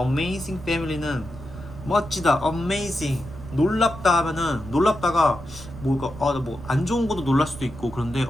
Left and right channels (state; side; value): noise; right; rumble, 14 dB below the sound